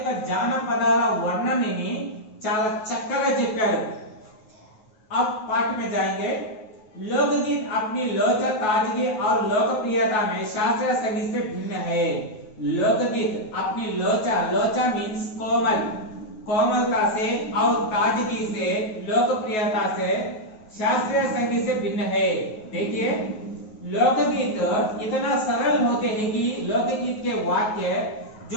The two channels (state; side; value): late; right; 9.3 ms